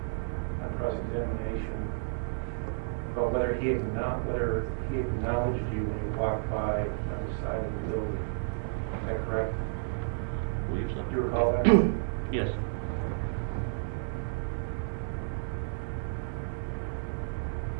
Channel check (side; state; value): left; silent; 57 dB below the other